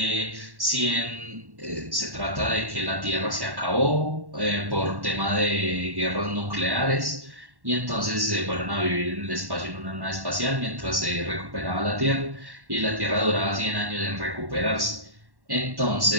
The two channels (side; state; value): left; late; 1.1 ms